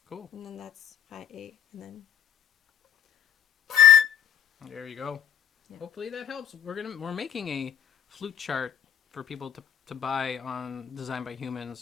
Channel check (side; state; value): right; quieter; 9.5 dB